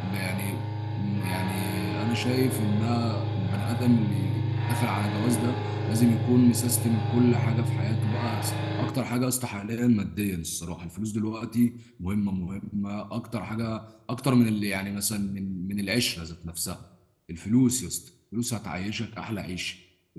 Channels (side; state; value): both; identical; correlation 1.00